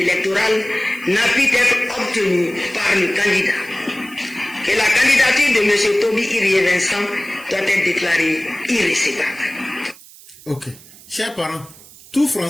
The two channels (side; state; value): right; noise; hiss, 21 dB below the sound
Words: n'a pu être obtenu par le candidat. Que la candidature de M. Toby Irie Vincent doit être déclarée irrécevable. Ok. Chers parents, tout